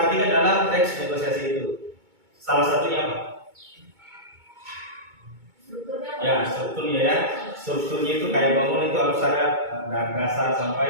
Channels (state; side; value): late; left; 2.2 ms